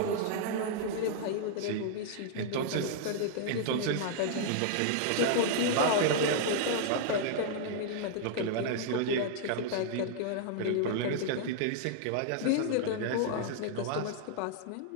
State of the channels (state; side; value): different; both; correlation -0.01